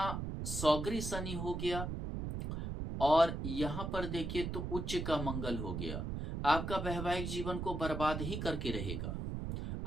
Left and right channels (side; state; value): right; noise; rumble, 4 dB below the sound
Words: सौगरी शनि हो गया और यहां पर देखिए तो उच्च का मंगल हो गया, आपका वैवाहिक जीवन को बर्बाद ही करके रहेगा।